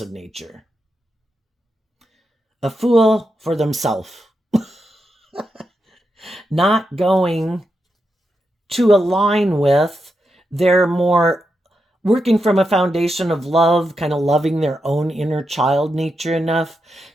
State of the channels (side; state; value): both; normal; correlation 0.86